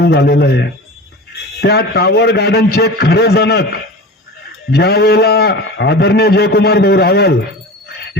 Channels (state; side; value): normal; both; correlation 0.34